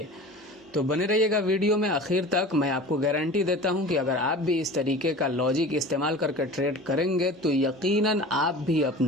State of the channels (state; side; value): normal; both; correlation 0.38